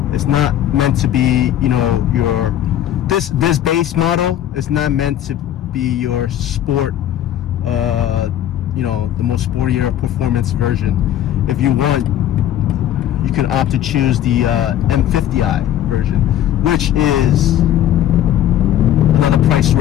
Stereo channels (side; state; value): right; quieter; 11.5 dB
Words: It's not meant to be, you know, this base model is not meant to be your sport, you know, the most sportier performance version. If you want, you can opt to choose the M50i version, which is another price